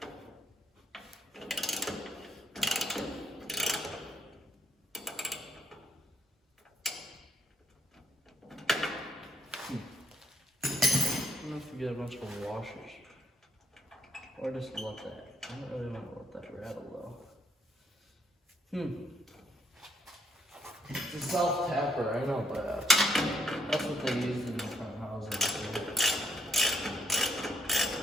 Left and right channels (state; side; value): normal; both; correlation 0.75